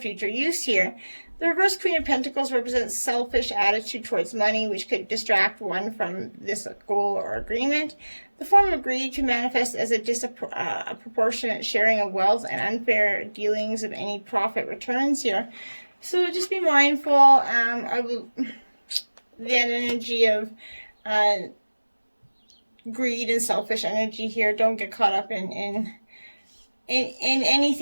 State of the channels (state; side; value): inverted; both; correlation -1.00